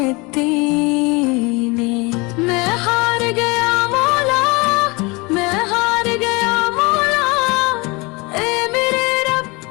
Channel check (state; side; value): quieter; right; 26.3 dB